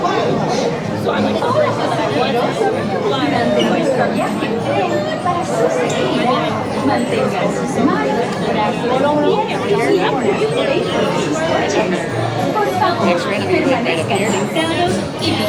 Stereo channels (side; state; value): both; identical; correlation 1.00